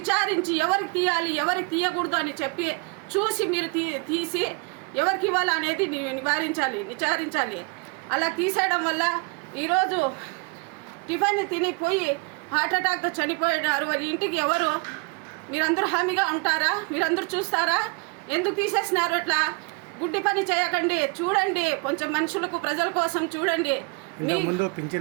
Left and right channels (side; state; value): left; quieter; 31.6 dB